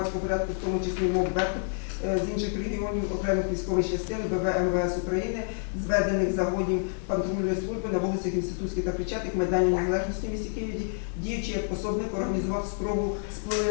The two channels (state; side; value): silent; right; digital silence